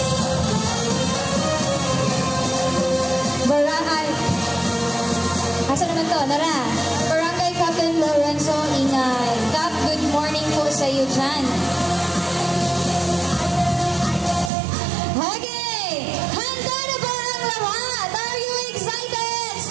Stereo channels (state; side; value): drops out; left; at 14.5 s